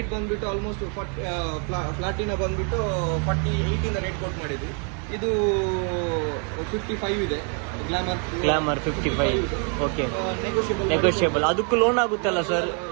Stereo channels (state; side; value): quieter; left; 39.4 dB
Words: ಬಂದ್ಬಿಟ್ಟು ಆಲ್ಮೋಸ್ಟ್ ಪ್ಲಾಟಿನಾ ಬಂದ್ಬಿಟ್ಟು 48 ಇಂದ ರೇಟ್ ಕೋಟ್ ಮಾಡಿದ್ವಿ. ಇದು 55 ಇದೆ. ಗ್ಲಾಮರ್ 55. ಓಕೆ. ನೆಗೋಷಿಯಬಲ್. ಅದಕ್ಕೂ ಲೋನ್ ಆಗುತ್ತಲ್ಲ ಸರ್?